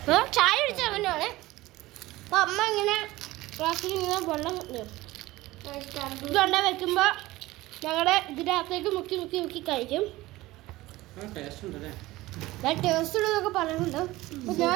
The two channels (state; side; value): quieter; left; 18.4 dB